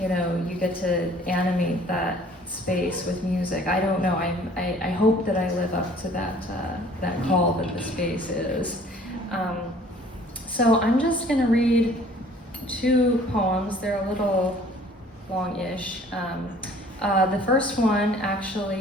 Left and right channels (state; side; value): normal; both; correlation 0.53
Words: know, you get to animate that space with music. I don't know. I hope that I live up to that call that the space is. So I'm just gonna read two poems. They're a little long-ish. The first one